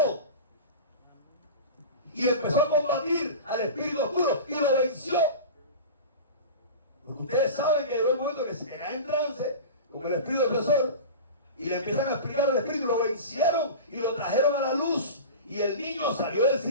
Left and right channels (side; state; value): both; inverted; correlation -0.31